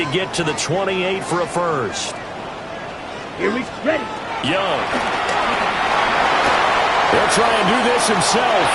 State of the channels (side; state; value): both; identical; correlation 1.00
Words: get to the 28 for a 1st. Here we ready. Young. He'll try and do this himself.